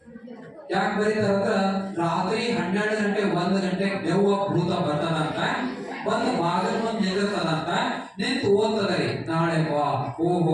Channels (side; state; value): both; identical; correlation 1.00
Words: ಯಾಕೆ ಬರೀತಾರ ಅಂದ್ರ ರಾತ್ರಿ 12 ಗಂಟೆ 1 ಗಂಟೆ ದೆವ್ವ ಭೂತ ಬರ್ತದಂತ, ಬಂದು ಬಾಗಿಲು ಮುಂದೆ ನಿಂದಿರ್ತದಂತ, ನಿಂತು ಓದ್ತದರಿ ನಾಳೆ ಬಾ.